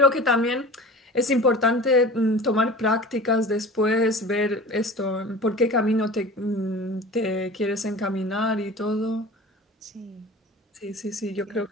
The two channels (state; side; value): normal; both; correlation 0.38